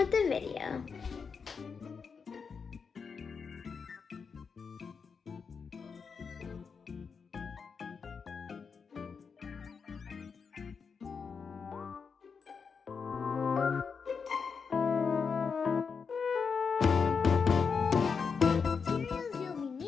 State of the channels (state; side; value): quieter; right; 5.7 dB